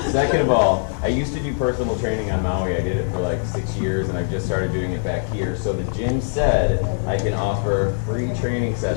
Second of all, I used to do personal training on Maui. I did it for like 6 years, and I've just started doing it back here. So the gym said I can offer free training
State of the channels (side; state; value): right; silent; digital silence